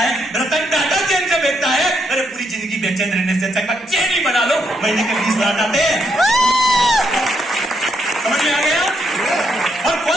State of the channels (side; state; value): both; normal; correlation 0.77